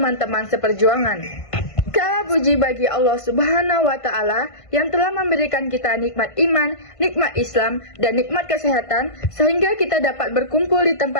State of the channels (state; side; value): late; right; 1.5 ms